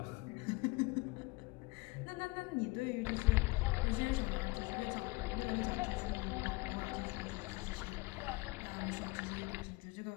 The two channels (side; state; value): right; quieter; 23.3 dB